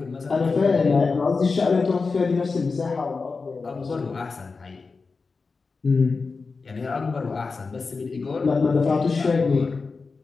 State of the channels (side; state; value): right; quieter; 4.4 dB